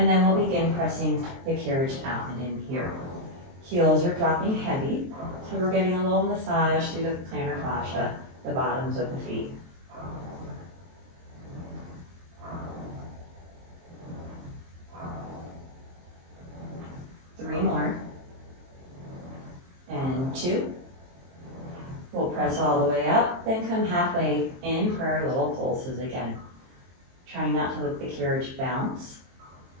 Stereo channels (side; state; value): left; late; 23 ms